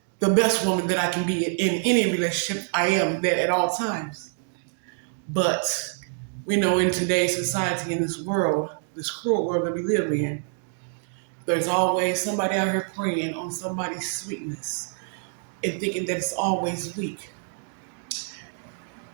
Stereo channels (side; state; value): left; silent; 61 dB below the other